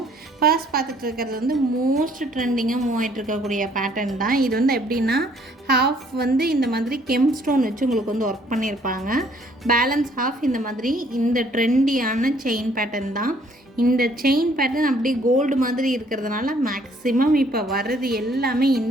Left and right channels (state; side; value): normal; both; correlation 0.62